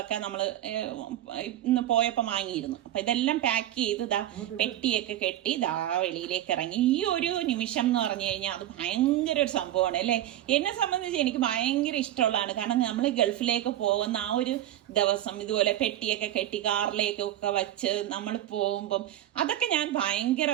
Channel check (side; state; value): left; quieter; 12.9 dB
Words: നമ്മൾ ഇന്ന് പോയപ്പോൾ വാങ്ങിയിരുന്നു. അപ്പൊ ഇതെല്ലാം പാക്ക് ചെയ്ത് പെട്ടിയൊക്കെ കെട്ടി വെളിയിലേക്ക് ഇറങ്ങി. ഈ ഒരു നിമിഷം എന്ന് പറഞ്ഞു കഴിഞ്ഞാൽ അത് ഭയങ്കര ഒരു സംഭവമാണ് അല്ലെ. എന്നെ സംബന്ധിച്ച് എനിക്ക് ഭയങ്കര ഇഷ്ടമുള്ളതാണ്. കാരണം നമ്മൾ ഗൾഫിലേക്ക് പോകുന്ന ആ ഒരു ദിവസം ഇതുപോലെ പെട്ടിയൊക്കെ കെട്ടി കാറിലേക്കൊക്കെ വെച്ച് നമ്മൾ പോകുമ്പം അതൊക്കെ ഞാൻ